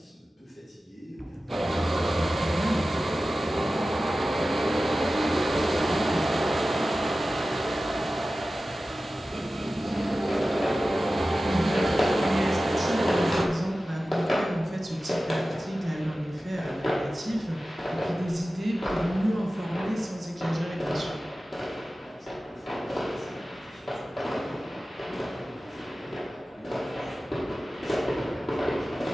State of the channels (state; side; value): normal; both; correlation 0.95